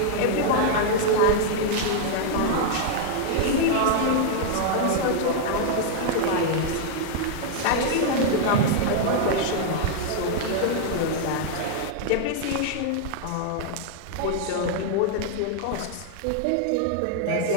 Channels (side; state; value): both; different; correlation -0.01